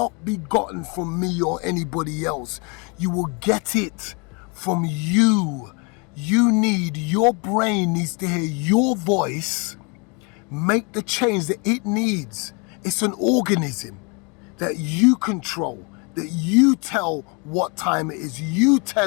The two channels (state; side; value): quieter; right; 32.3 dB